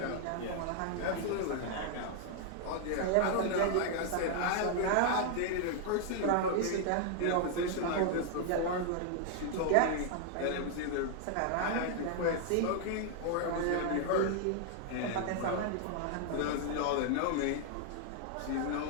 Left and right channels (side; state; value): both; different; correlation 0.00